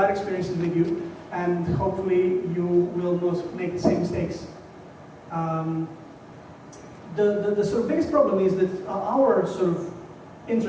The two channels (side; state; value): both; identical; correlation 1.00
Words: experiences with you, and hopefully you will not make the same mistakes. The sort of biggest problem is that our sort of